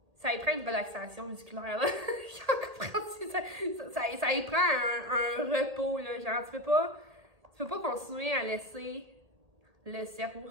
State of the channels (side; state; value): left; late; 1.8 ms